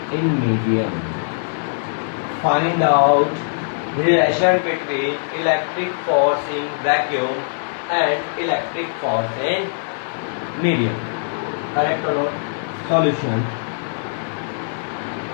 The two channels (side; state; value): right; silent; 65 dB below the other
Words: in medium. Find out relation between electric force in vacuum and electric force in medium. Correct or not? Solution.